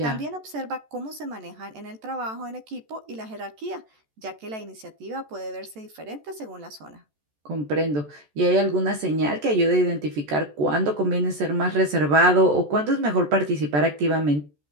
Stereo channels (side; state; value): left; late; 14 ms